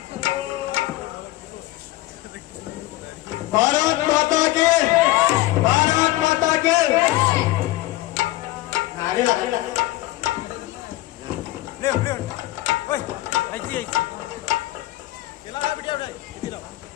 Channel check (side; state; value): right; quieter; 17.6 dB